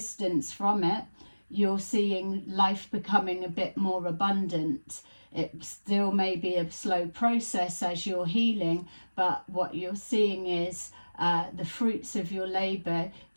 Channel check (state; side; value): inverted; both; correlation -1.00